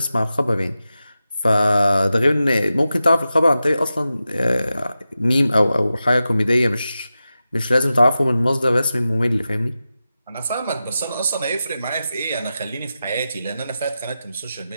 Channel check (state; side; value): inverted; both; correlation -0.92